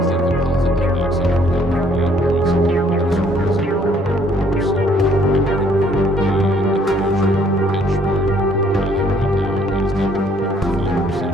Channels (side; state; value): both; normal; correlation 0.63